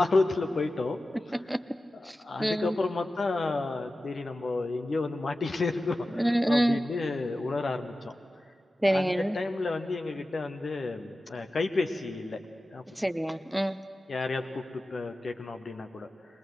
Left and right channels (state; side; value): normal; both; correlation 0.94